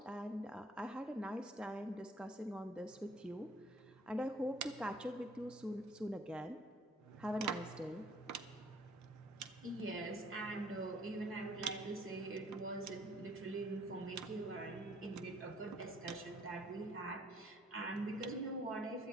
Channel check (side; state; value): both; normal; correlation 0.60